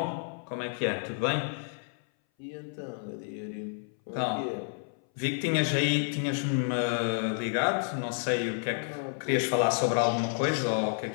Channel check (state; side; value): silent; right; 58 dB below the other